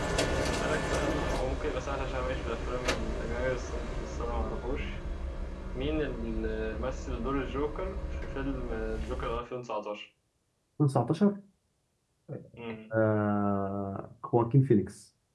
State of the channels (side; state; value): both; identical; correlation 1.00